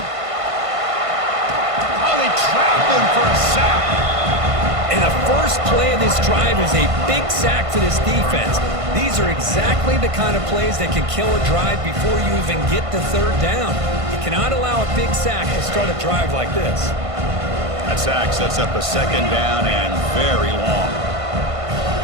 Oh, they trap him for a sack. And the first play of this drive is a big sack for this defense. These are exactly the kind of plays that can kill a drive before you even get to 3rd down. You cannot allow a big sack to start a drive like this. That sack sets up a 2nd down and very long.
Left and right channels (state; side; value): late; left; 1.5 ms